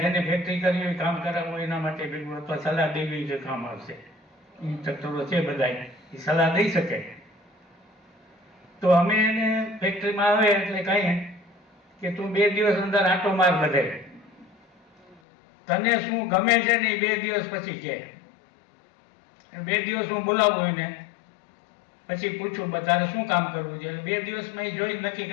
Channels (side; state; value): right; drops out; at 15.2 s